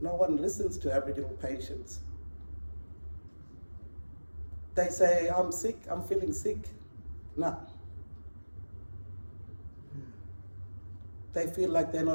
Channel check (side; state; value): both; inverted; correlation -1.00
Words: No one listens to Aboriginal patients. They say, I'm sick, I'm feeling sick. No. They feel like they're